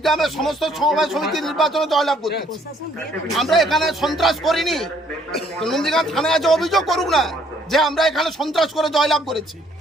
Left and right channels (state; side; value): normal; both; correlation 0.64